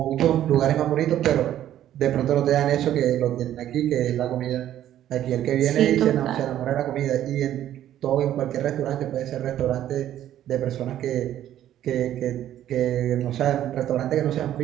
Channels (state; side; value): quieter; left; 11.9 dB